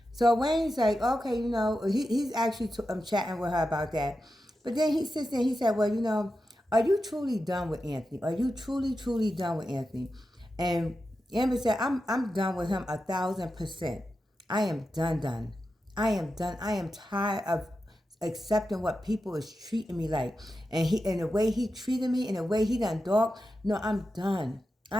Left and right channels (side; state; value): both; normal; correlation 0.90